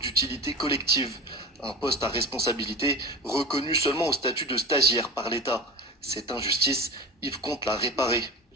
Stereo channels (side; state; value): both; normal; correlation 0.31